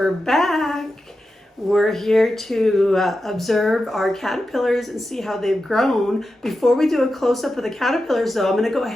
back. We're here to observe our caterpillars and see how they've grown. Before we do a close-up of the caterpillars though, I'm going to go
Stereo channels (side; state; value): both; normal; correlation 0.91